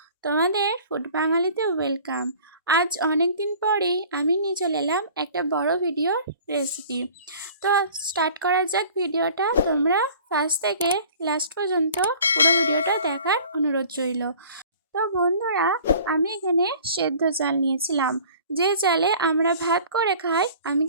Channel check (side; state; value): both; inverted; correlation -0.48